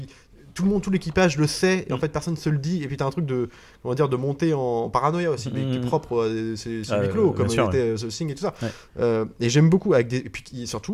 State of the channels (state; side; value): identical; both; correlation 1.00